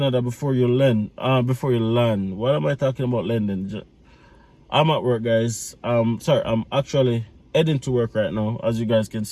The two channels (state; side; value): identical; both; correlation 1.00